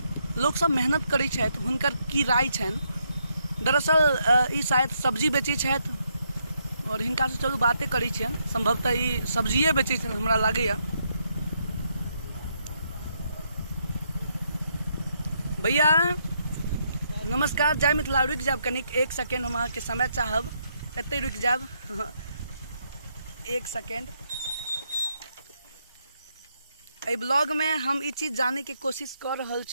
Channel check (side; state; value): both; inverted; correlation -0.77